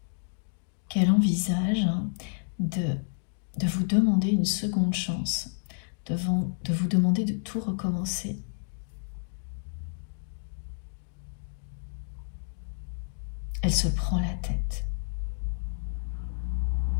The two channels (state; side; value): silent; right; digital silence